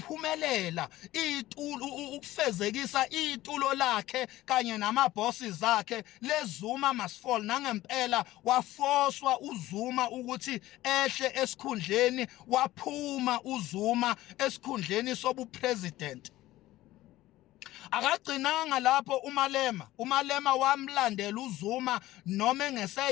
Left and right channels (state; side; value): quieter; right; 16.2 dB